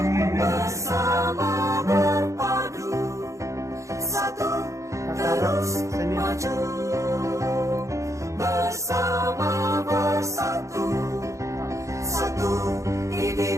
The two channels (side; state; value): left; late; 0.15 ms